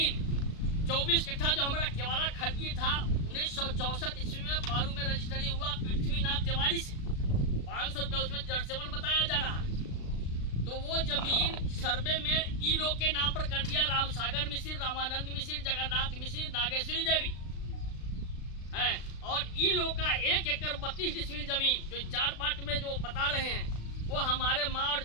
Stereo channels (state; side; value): late; right; 36 ms